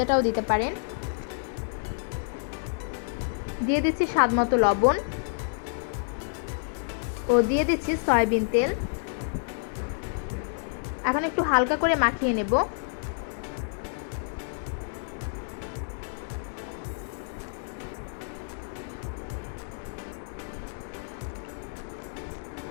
দিতে পারেন। দিয়ে দিচ্ছি স্বাদমতো লবণ ও দিয়ে দিচ্ছি সয়াবিন তেল। এখন একটু হালকা করে মাখিয়ে নেব।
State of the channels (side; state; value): right; silent; digital silence